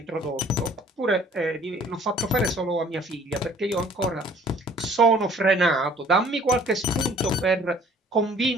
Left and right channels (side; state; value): both; normal; correlation 0.55